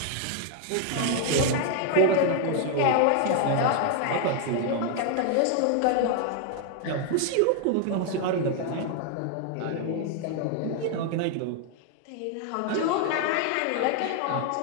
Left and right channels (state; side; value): different; both; correlation 0.00